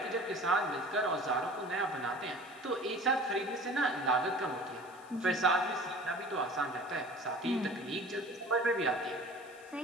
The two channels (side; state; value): left; noise; hiss, 25 dB below the sound